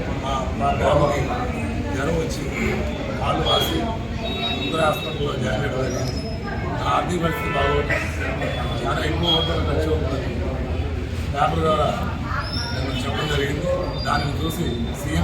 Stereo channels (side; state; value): both; identical; correlation 1.00